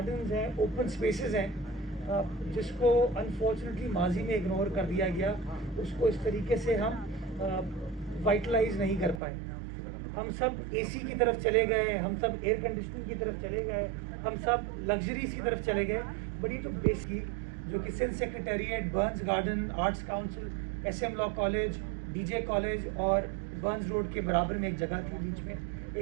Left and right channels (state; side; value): drops out; left; at 9.2 s